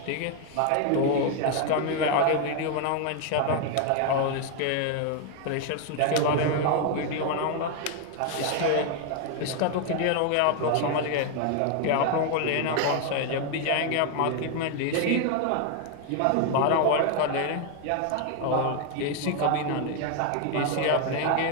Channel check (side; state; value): both; different; correlation 0.01